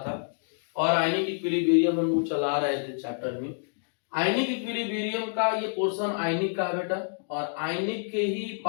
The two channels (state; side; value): silent; right; digital silence